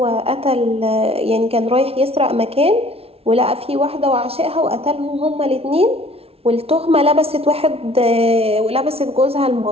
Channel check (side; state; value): left; late; 0.29 ms